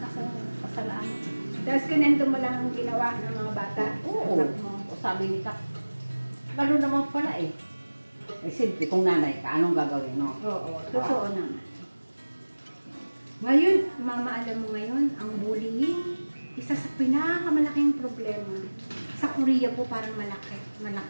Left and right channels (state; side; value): inverted; both; correlation -1.00